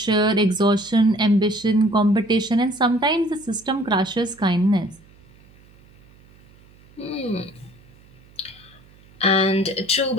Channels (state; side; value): noise; right; hum, 27 dB below the sound